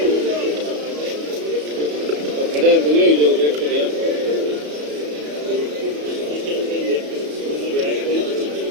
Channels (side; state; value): left; late; 33 ms